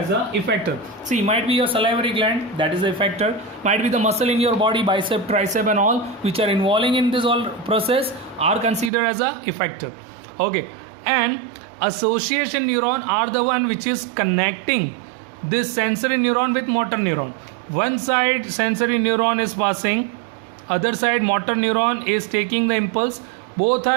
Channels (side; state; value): left; drops out; at 8.9 s